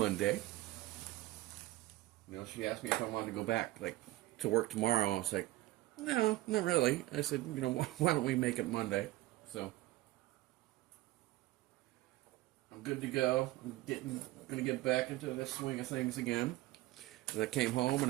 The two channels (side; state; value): left; quieter; 17.2 dB